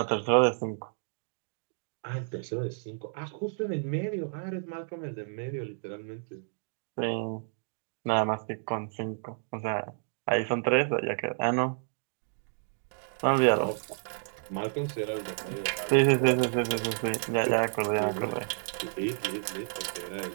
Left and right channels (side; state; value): left; silent; digital silence